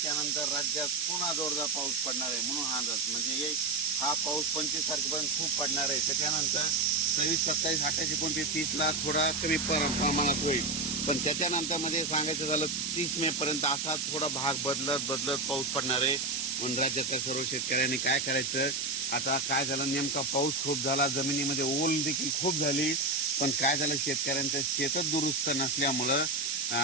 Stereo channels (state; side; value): noise; right; hiss, 3 dB below the sound